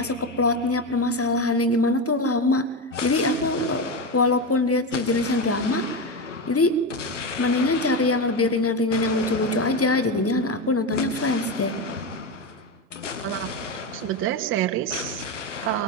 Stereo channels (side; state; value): both; normal; correlation 0.16